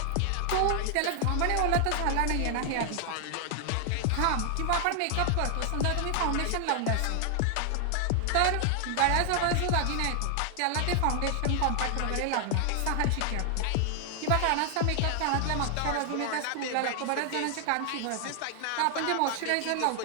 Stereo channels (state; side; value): different; both; correlation 0.00